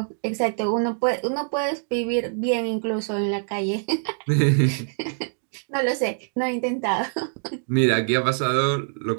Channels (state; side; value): silent; left; digital silence